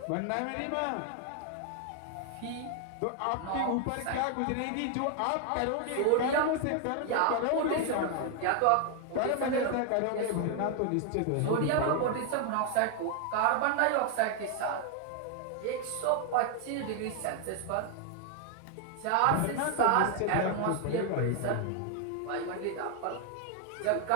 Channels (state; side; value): different; both; correlation 0.00